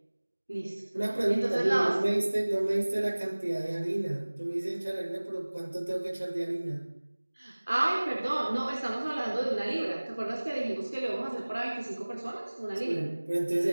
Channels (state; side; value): inverted; both; correlation -1.00